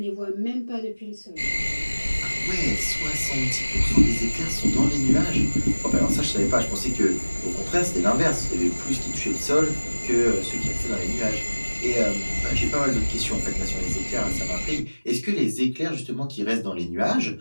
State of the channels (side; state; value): both; inverted; correlation -1.00